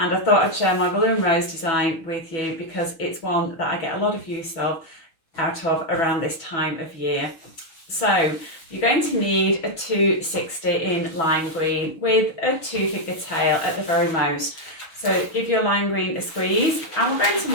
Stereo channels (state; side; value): late; right; 6.2 ms